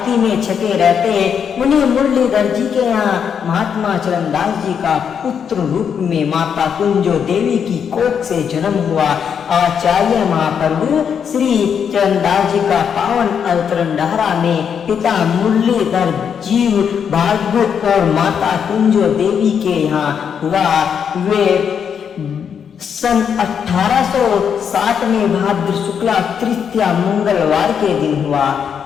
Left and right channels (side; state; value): right; quieter; 7.5 dB